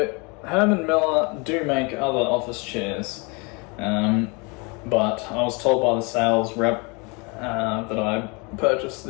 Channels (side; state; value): right; quieter; 30.2 dB